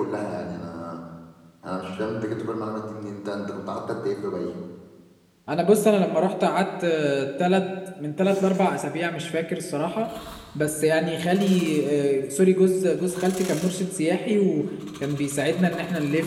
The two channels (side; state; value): both; identical; correlation 1.00